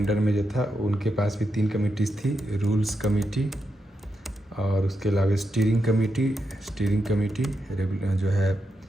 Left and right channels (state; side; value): normal; both; correlation 0.85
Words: में, जो था उनके पास भी 3 कमेटीज़ थी, रूल्स कमेटी और उसके अलावा स्टीयरिंग कमेटी जो है